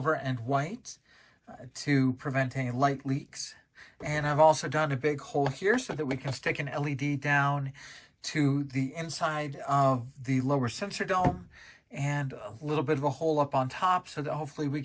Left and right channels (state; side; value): identical; both; correlation 1.00